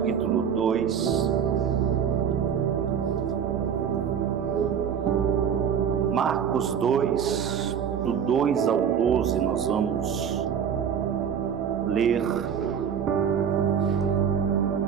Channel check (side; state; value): left; quieter; 7.8 dB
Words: 2. Marcos 2, do 2 ao 12, nós vamos ler.